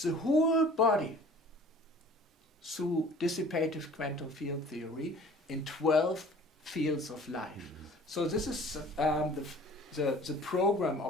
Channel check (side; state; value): both; normal; correlation 0.48